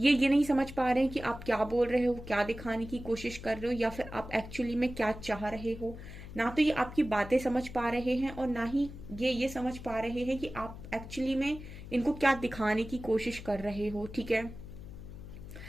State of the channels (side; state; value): left; noise; hum, 13 dB below the sound